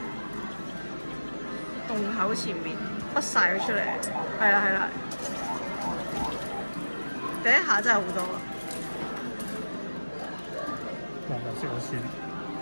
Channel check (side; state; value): both; inverted; correlation -1.00